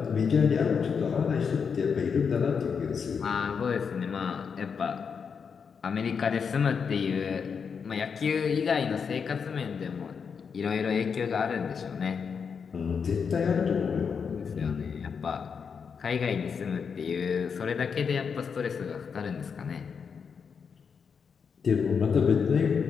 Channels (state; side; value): quieter; right; 6.2 dB